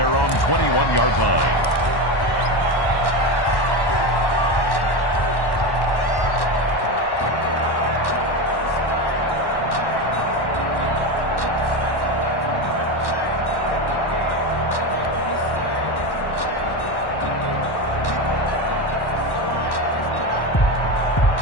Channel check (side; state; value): right; late; 1.1 ms